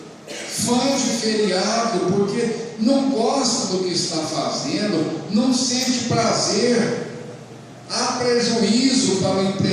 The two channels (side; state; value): both; identical; correlation 1.00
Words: fã de feriado, porque não gosta do que está fazendo, não sente prazer. Há prejuízo para o